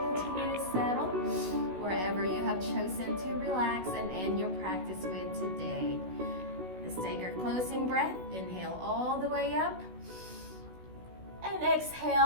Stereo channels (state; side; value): late; left; 16 ms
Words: Chosen to relax and end your practice with today. Let's take our closing breath. Inhale all the way up. And